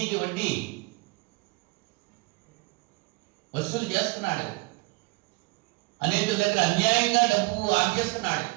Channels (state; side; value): quieter; left; 26.0 dB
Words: వడ్డీ వసూలు చేస్తున్నాడు. అనేక దగ్గర అన్యాయంగా డబ్బు ఆర్జిస్తున్నాడు.